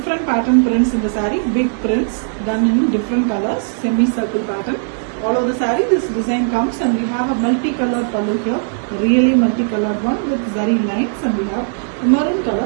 pattern prints in the saree, big prints done in different colors, semi-circle pattern. All over the saree this design comes, and we have a multicolored pallu here, really multicolored one with zari lines, and we have a maroon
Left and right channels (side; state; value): left; silent; 68 dB below the other